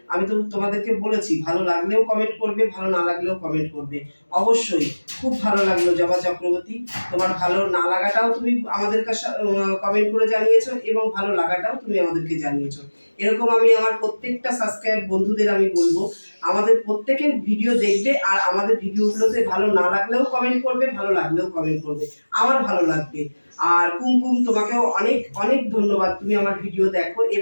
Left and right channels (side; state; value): both; inverted; correlation -1.00